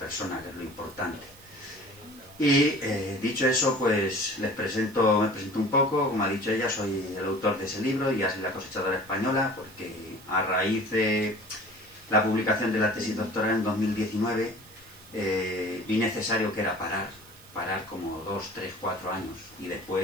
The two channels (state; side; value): noise; right; hiss, 22 dB below the sound